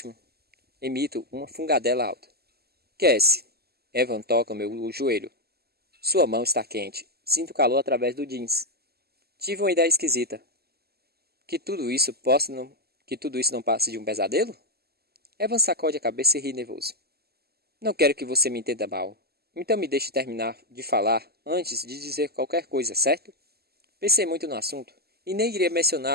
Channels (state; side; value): late; left; 0.46 ms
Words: Emito uma fungadela alta. Cassie. Evan toca meu joelho. Sua mão está quente. Sinto calor através do jeans. Tive uma ideia esquisita. Que tudo isso não passe de um pesadelo? Evan sacode a cabeça e ri nervoso. Não quero que você me entenda mal. Então me deixe terminar de falar antes de dizer qualquer coisa, certo? Pensei muito no assunto e nem iria